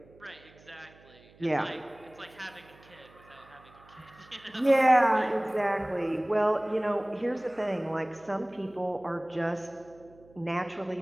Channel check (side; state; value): right; noise; hum, 26 dB below the sound